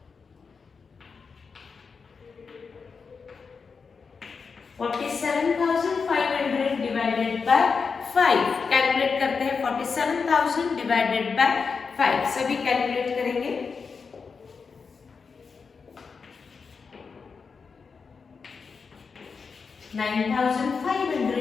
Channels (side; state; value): right; quieter; 5.3 dB